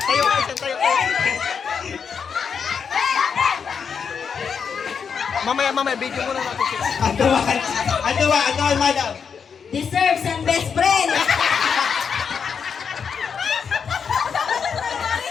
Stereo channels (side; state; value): right; quieter; 6.5 dB